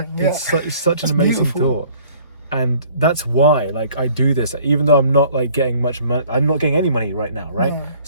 It's such an amazing thought. And that's why, like, I do this, even though I'm not like getting much money. I'm not getting any money right now, right? No.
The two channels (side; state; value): both; inverted; correlation -0.55